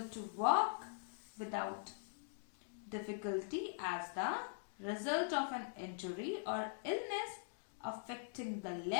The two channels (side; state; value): right; silent; digital silence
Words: to walk without difficulty as the result of an injury or illness affecting the